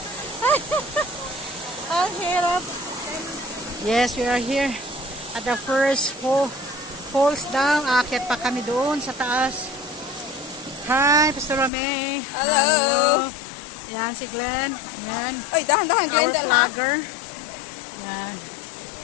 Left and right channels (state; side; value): drops out; right; at 11.7 s